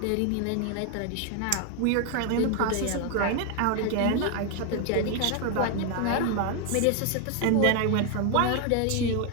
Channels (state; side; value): different; both; correlation 0.01